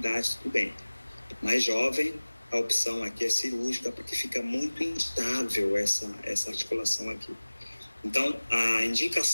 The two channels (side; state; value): both; inverted; correlation -1.00